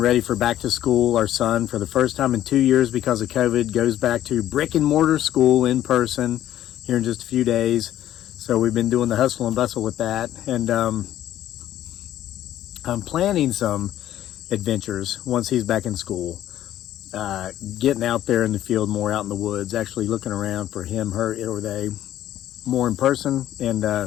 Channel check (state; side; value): quieter; right; 12.4 dB